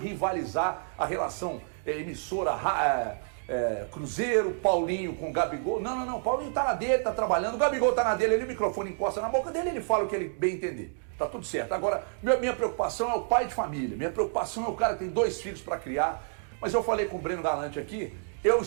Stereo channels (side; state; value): left; silent; digital silence